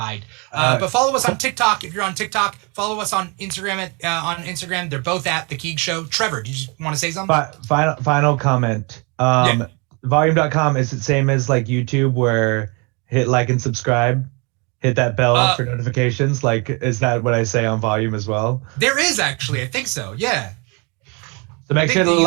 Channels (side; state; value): left; quieter; 31.4 dB